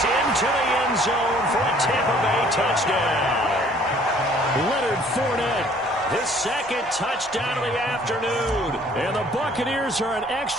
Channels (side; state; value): both; normal; correlation 0.57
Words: into the end zone for a Tampa Bay touchdown. Leonard Fournette. His 2nd touchdown of the afternoon. And the Buccaneers are an